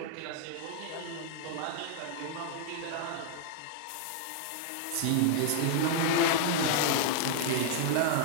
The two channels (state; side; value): different; both; correlation -0.01